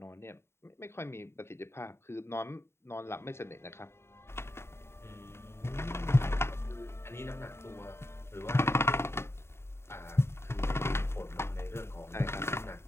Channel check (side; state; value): right; late; 0.12 ms